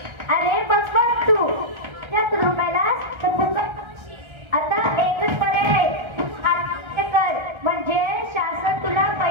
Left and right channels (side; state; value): left; late; 1.3 ms